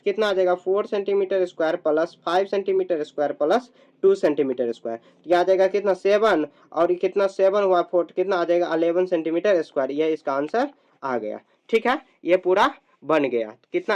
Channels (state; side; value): identical; both; correlation 1.00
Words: कितना आ जाएगा 4 centimetre square plus 5 centimetre square plus 2 centimetre square, तो यह आ जाएगा कितना 7, और कितना 7 हुआ 4, कितना आ जाएगा 11 सेंटीमीटर स्क्वायर, यह इसका आंसर आ गया, ठीक है। ये पूरा बन गया, कितना